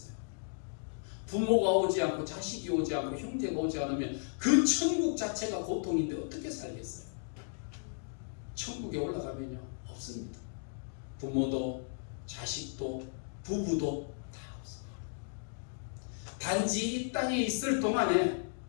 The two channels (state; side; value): silent; right; digital silence